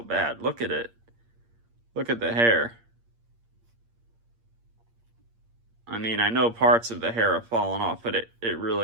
bad. Look at it. Look at the hair. I mean, I know parts of the hair have fallen off, but it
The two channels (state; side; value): late; left; 8.6 ms